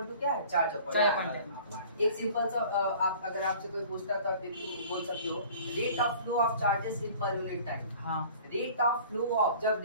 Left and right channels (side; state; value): both; inverted; correlation -0.47